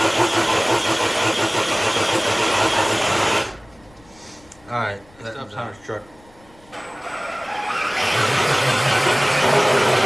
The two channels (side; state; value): left; noise; rumble, 28 dB below the sound